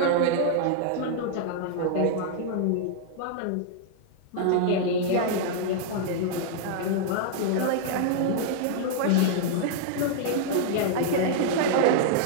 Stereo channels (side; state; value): both; different; correlation -0.01